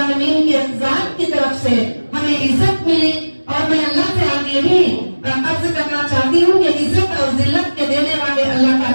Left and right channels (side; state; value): both; inverted; correlation -1.00